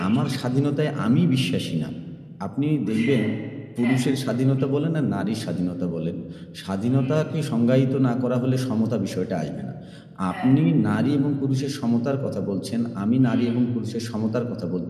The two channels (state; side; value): identical; both; correlation 1.00